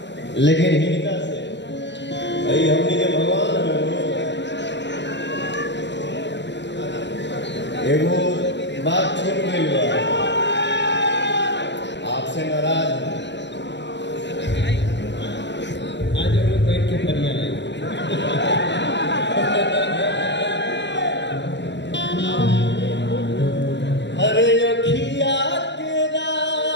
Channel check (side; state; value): right; late; 0.51 ms